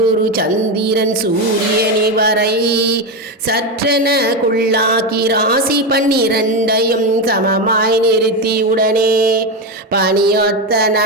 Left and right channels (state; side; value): normal; both; correlation 0.13